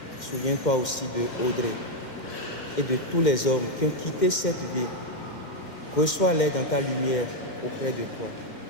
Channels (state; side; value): late; right; 2.1 ms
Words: Souviens-toi aussi de Audrey et de tous les hommes qui ont quitté cette vie. Reçois-les dans ta lumière auprès de toi.